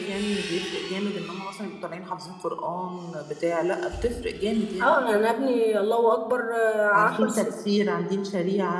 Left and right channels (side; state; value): both; identical; correlation 1.00